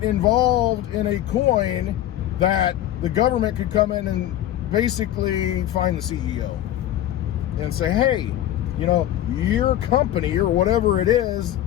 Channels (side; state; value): right; quieter; 12.8 dB